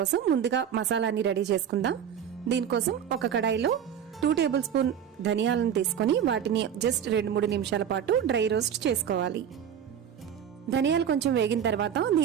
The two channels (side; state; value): left; quieter; 8.7 dB